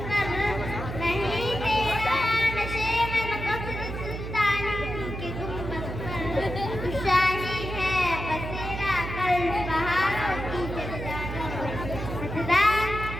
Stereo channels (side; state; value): right; noise; hum, 6 dB below the sound